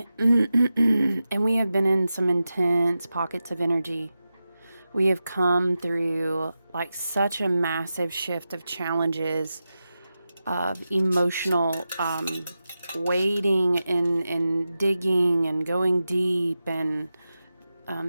and we have been in some intense pockets of energy. We have come through like such a massive shift of challenges, of emotional wading and digging and going deep and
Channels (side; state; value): both; inverted; correlation -0.92